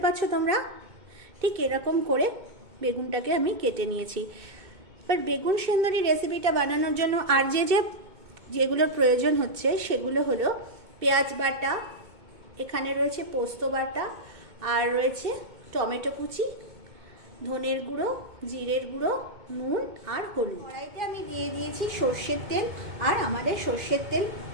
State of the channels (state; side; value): late; left; 2.2 ms